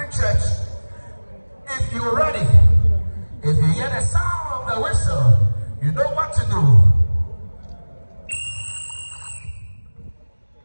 Church. If you're ready, if you hear the sound of the whistle, you know what to do.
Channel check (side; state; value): both; inverted; correlation -1.00